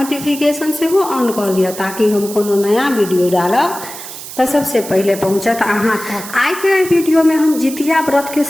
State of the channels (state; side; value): noise; right; hiss, 12 dB below the sound